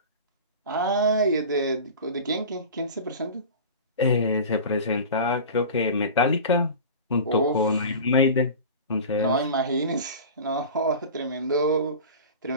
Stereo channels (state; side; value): inverted; both; correlation -0.34